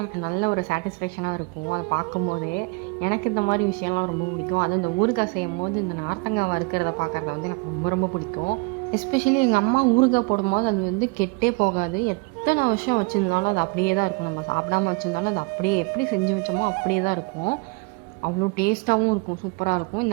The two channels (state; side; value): quieter; left; 29.5 dB